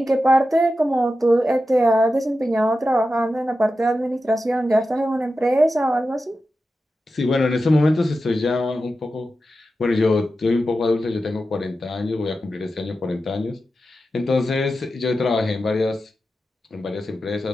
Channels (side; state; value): both; normal; correlation 0.91